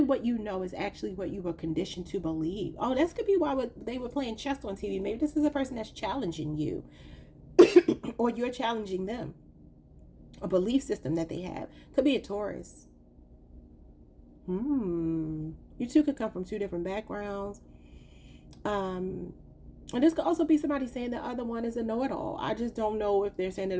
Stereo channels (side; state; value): both; identical; correlation 1.00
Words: what you know is actually what you were conditioned to believe? Oh, this could be why they were playing chess on TV. Maybe this is a person that's challenging you. Or you're challenging them. A belief system that they have. Could be a Taurus. You two could come from two different backgrounds. And this could also be somebody saying the other one is a know-it-all. I just don't know if they're saying it